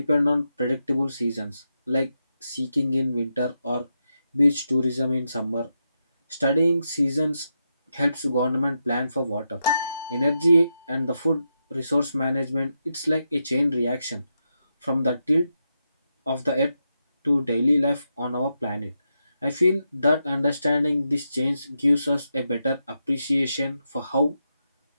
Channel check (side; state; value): both; inverted; correlation -0.85